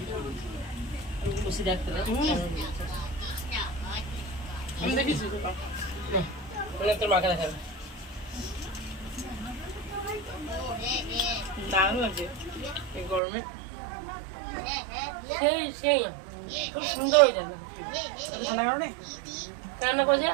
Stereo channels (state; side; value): drops out; left; at 13.2 s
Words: তোর মাকে দেখাবে দারুণ লাগছে এই গরমে। সেই সেই খুব সুন্দর হয়ে যাবে। রান্না করছে